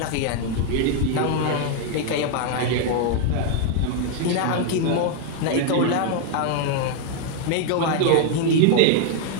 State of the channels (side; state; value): both; different; correlation 0.00